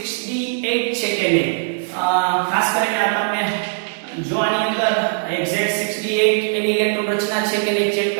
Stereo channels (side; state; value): left; silent; digital silence